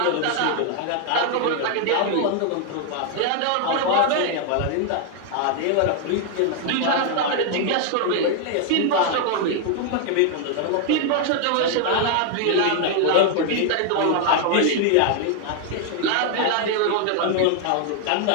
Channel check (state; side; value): different; both; correlation 0.00